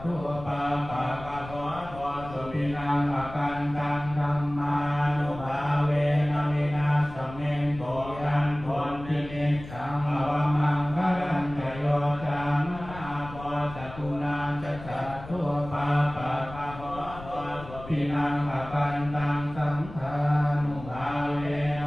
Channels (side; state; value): left; noise; rumble, 14 dB below the sound